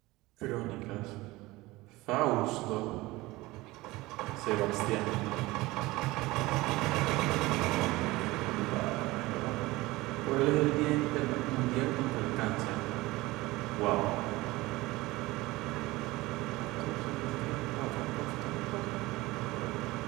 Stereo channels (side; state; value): left; quieter; 20.1 dB